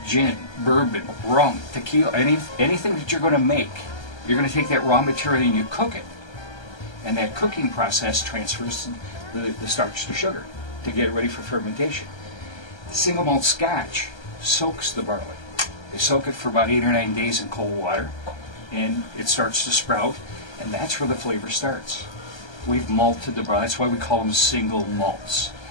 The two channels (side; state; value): right; late; 1.3 ms